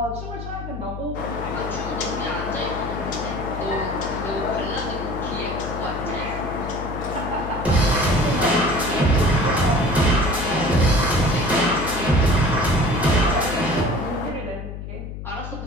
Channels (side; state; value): left; noise; hum, 9 dB below the sound